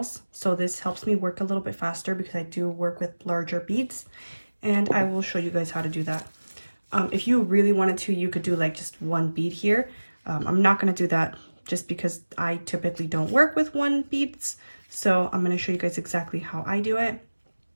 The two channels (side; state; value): both; inverted; correlation -1.00